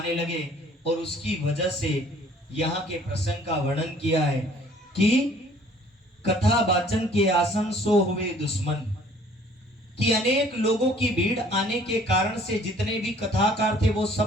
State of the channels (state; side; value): normal; both; correlation 0.55